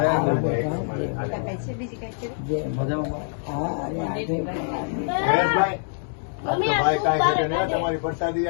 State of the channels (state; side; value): silent; right; digital silence